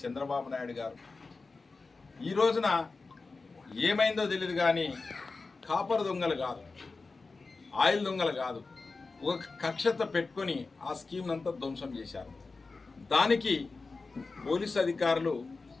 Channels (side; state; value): right; quieter; 3.9 dB